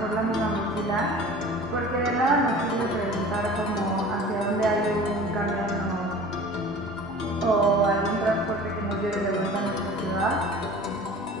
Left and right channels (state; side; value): normal; both; correlation 0.41